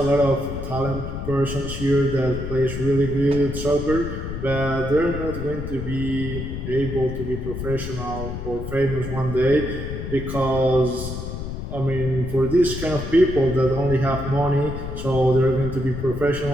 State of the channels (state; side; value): noise; left; rumble, 6 dB below the sound